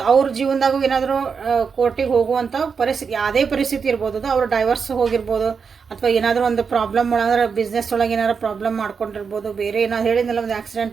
ಅವ್ರ ಜೀವನದಾಗೂ ಏನಾದರೂ ಕೋರ್ಟಿಗೆ ಹೋಗುವಂಥ ಪರಿಸ್ಥಿತಿ, ಯಾವುದೇ ಪರಿಸ್ಥಿತಿ ಇರ್ಬೋದು ಅದು. ಅವ್ರು ಡೈವರ್ಸ್ ಹೋಗಿರ್ಬೋದು, ಅಥವಾ ಏನಾದರೂ ಒಂದು ಪ್ರಾಬ್ಲಮ್ ಒಳಗೆ ಬಿಸ್ನೆಸ್ ಒಳಗೆ ಏನಾದ್ರು ಪ್ರಾಬ್ಲಮ್ ಮಾಡ್ಕೊಂಡಿರ್ಬೋದು, ಬೇರೆ ಏನಾದ್ರು ಹೇಳಿದ್ನಲ್ಲ ಒಂದು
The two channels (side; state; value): left; quieter; 5.8 dB